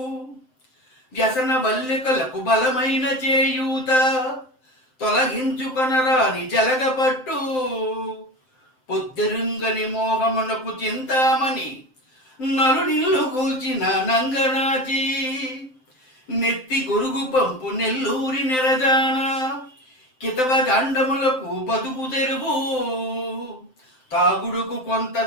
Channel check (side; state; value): right; late; 7.8 ms